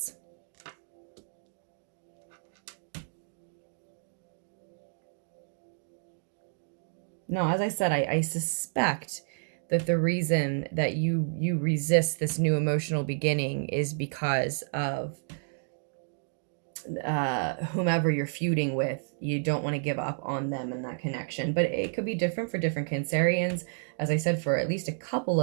Now, as I said, I suspect that the reason that you resist this new emotional beginning is because of whomever you're feuding with. You don't want to give up on them and that connection, but it could be different for different Cancerians. As I said, for at least a couple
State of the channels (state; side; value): silent; left; digital silence